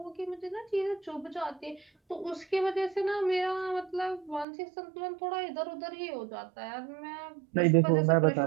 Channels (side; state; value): left; drops out; at 4.5 s